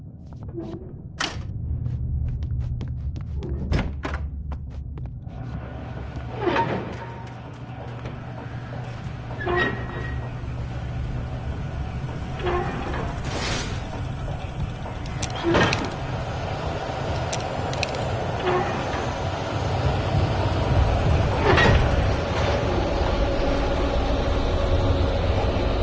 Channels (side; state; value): both; identical; correlation 1.00